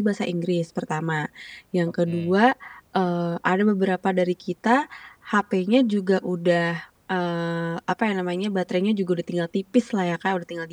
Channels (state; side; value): identical; both; correlation 1.00